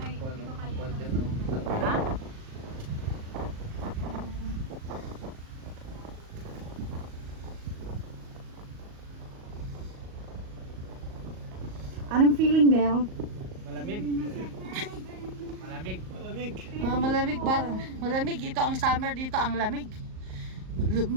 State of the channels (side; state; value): left; late; 38 ms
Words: hindi ko kaya Kwan dyan, naman. Ha? Anong feeling, Del? Malamig. Malamig. Malamig. Malamig ba? Malamig. Ito ang summer dito, ang lamig.